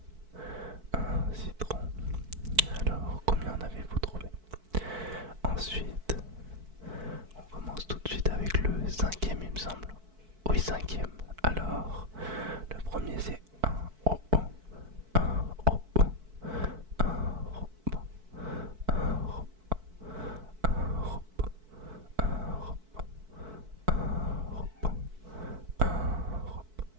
un citron. Alors, combien en avez-vous trouvé? Ensuite, on commence tout de suite avec le cinquième, il me semble. Oui, cinquième. Alors, le premier c'est un robot, un robot, un robot, un robot, un robot, un robot, un robot, un robot.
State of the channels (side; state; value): left; late; 4.6 ms